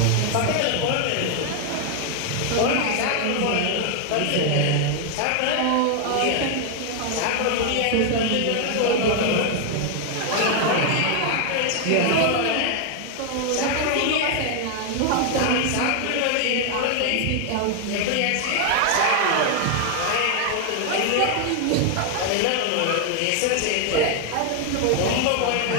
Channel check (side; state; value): both; different; correlation 0.00